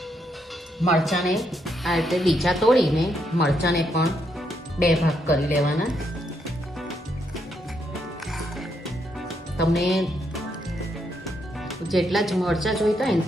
મરચાંને આ રીતે ડીચા તોડીને મરચાંને પણ 2 ભાગ કરી લેવાના. તમને જેટલા જ મરચાં જોઈતા હોય ને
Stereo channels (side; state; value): both; normal; correlation 0.77